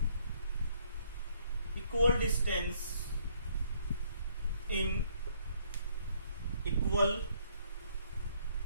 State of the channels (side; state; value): both; inverted; correlation -0.66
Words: equal distance in equal